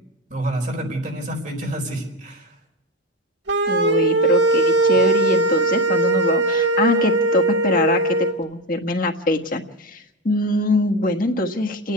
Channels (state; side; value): normal; both; correlation 0.16